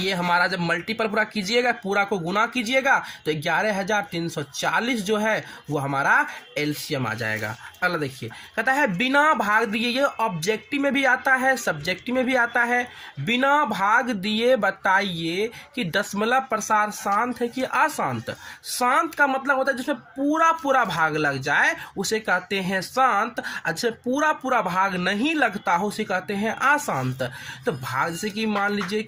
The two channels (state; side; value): identical; both; correlation 1.00